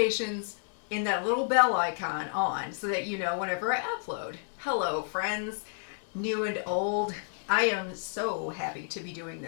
in that little bell icon on so that you know whenever I upload. Hello friends, new and old. I am so happy to be doing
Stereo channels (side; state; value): right; silent; digital silence